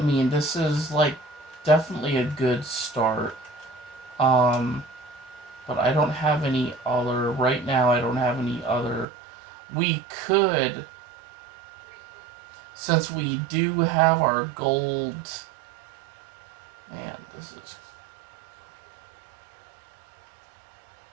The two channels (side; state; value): left; drops out; at 9.1 s